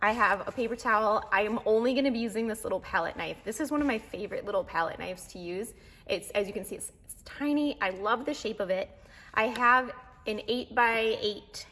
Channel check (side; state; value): both; identical; correlation 1.00